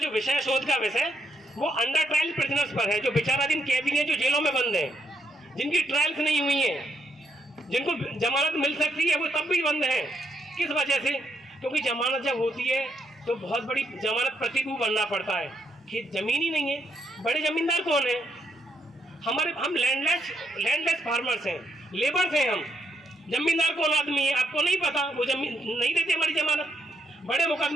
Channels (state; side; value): normal; both; correlation 0.77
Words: विषय, शोध का विषय, वो अंडर ट्रायल प्रिजनर्स पर है, जो विचाराधीन कैदी हैं, जो जेलों में बंद हैं, जिनकी ट्रायल्स नहीं हुई हैं, जिनको जमानत मिल सकती है वो तब भी बंद हैं। किस वजह से? क्योंकि जमानत जब होती है तो बहुत बड़ी जमानत प्रतिभू बनना पड़ता है, कि जमीन ही नहीं है। बड़े जमींदार कौन है? हम लैंडलेस फार्मर्स हैं, लेबर्स हैं हम। जमींदार कौन आदमी है आपको नहीं पता, वो जमीन नहीं देते हमारी जमानत। बड़े